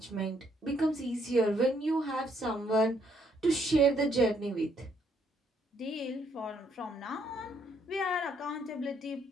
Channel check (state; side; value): normal; both; correlation 0.70